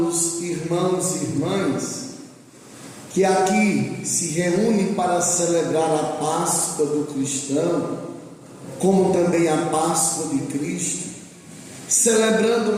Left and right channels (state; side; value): identical; both; correlation 1.00